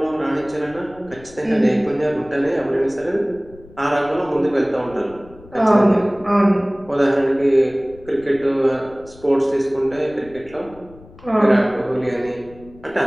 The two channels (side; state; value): left; noise; rumble, 22 dB below the sound